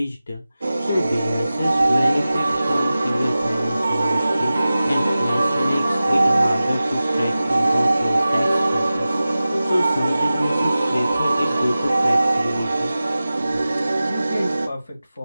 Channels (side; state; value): both; inverted; correlation -0.96